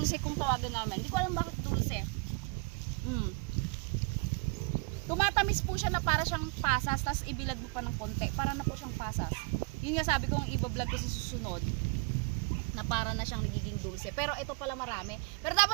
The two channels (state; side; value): quieter; left; 30.1 dB